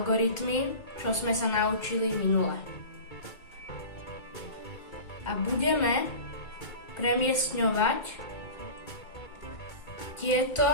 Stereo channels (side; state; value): right; late; 2.1 ms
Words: čo sme sa naučili minule. A budeme premiestňovať